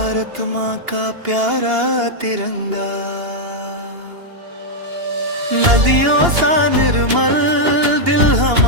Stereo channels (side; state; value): left; late; 2.8 ms